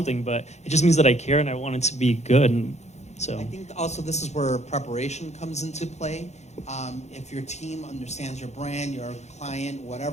But it just means that I care, and I want it to be good. And so I think also this is where preparation comes into play. If your team understands your brand, your client,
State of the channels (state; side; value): late; right; 0.33 ms